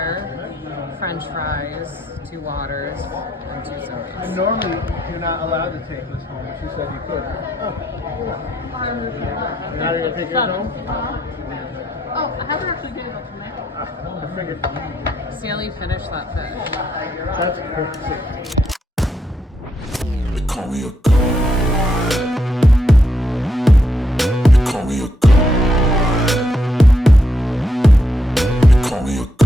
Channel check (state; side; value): normal; both; correlation 0.77